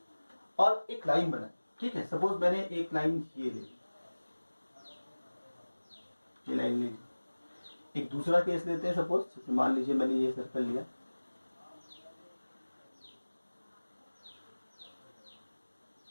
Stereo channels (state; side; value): inverted; both; correlation -1.00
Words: और एक लाइन बनाई, ठीक है। सपोज मैंने एक लाइन ये ले ली, ये लाइन ले ली। एक दूसरा केस लेते हैं, सपोज मान लीजिए मैंने ये सर्कल लिया,